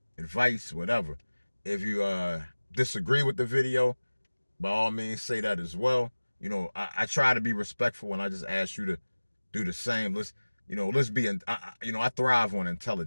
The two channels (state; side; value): inverted; both; correlation -1.00